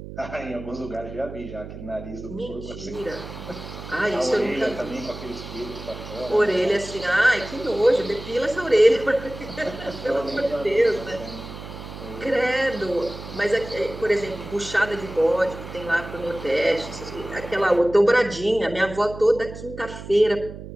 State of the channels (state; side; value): noise; right; hum, 12 dB below the sound